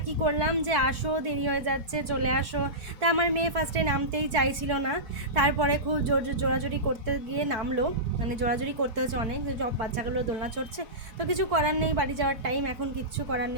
করলাম যে আসো, দেরি হয়ে যাচ্ছে, চলে আসো। তা আমার মেয়ে ফার্স্টে নামতেই চাইছিল না, তারপরে খুব জোরাজোরি করতে গিয়ে নামলো, মানে জোরাজোরি করতে হচ্ছে অনেক, সব বাচ্চাগুলো দোলনা চড়ছে। তো কিছু করার নেই, বাড়ি যাওয়ার টাইম, এখন কিচ্ছু করার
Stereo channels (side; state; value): left; late; 4.6 ms